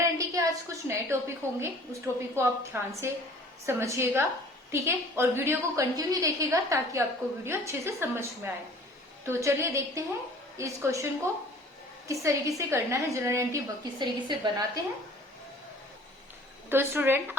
के आज कुछ नए टॉपिक होंगे, उस टॉपिक को आप ध्यान से समझिएगा। ठीक है, और वीडियो को कंटिन्यू देखिएगा ताकि आपको वीडियो अच्छे से समझ में आए। तो चलिए देखते हैं इस क्वेश्चन को किस तरीके से करना है, जनरल एंट्री किस तरीके से बनाते हैं। तो स्टूडेंट,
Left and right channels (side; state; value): both; normal; correlation 0.50